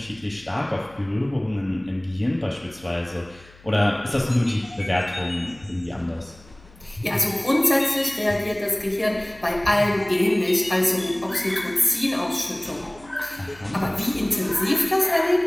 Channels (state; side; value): noise; left; hum, 25 dB below the sound